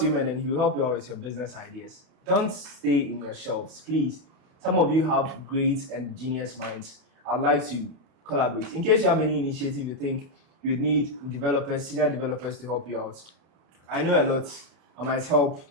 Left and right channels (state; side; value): late; left; 31 ms